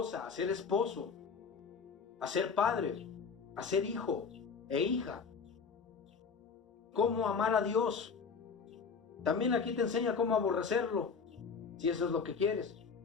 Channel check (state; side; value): quieter; right; 5.6 dB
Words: a ser esposo, a ser padre, a ser hijo e hija. Cómo amar a Dios. También aquí te enseña cómo aborrecerlo, si eso es lo que quieres.